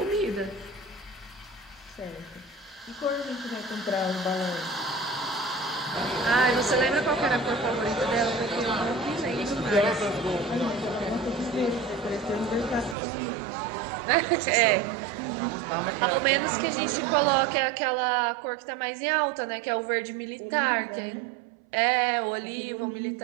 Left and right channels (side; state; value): left; drops out; at 13.0 s